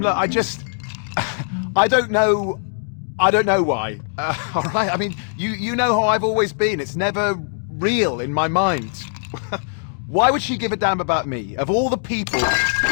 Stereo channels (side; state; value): right; silent; digital silence